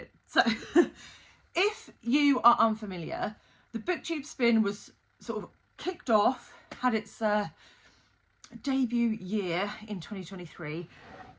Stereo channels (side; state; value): both; identical; correlation 1.00